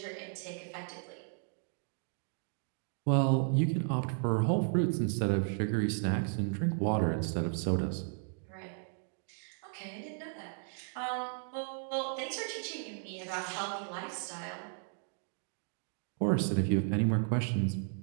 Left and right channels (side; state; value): left; silent; 55 dB below the other